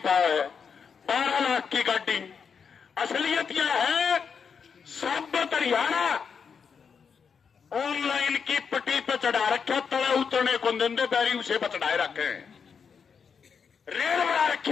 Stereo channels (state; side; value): quieter; right; 6.3 dB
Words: पाओ है 12 लाख की गाड़ी। असलियत यह है साबत हरियाणा ऑनलाइन की पट्टी पे चढ़ा रखा, तले उतरने को देंदे बैरी उसे पर चढ़ाए रखे। रेल बना रखी